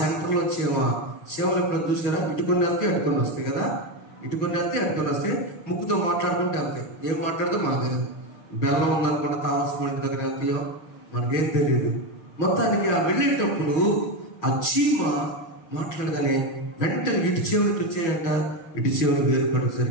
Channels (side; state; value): right; late; 6.4 ms